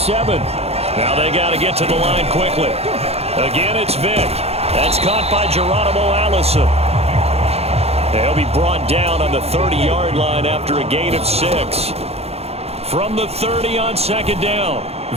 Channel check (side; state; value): left; late; 0.30 ms